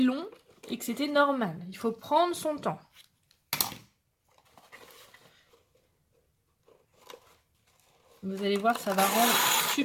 et que c'était normal. Il faut prendre son temps. Vous allez voir, ça va rendre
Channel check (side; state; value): both; identical; correlation 1.00